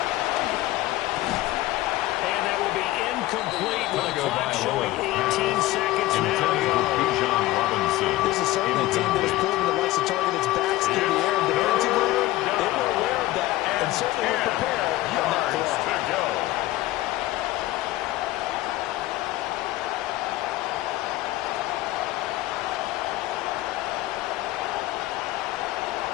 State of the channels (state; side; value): quieter; right; 16.8 dB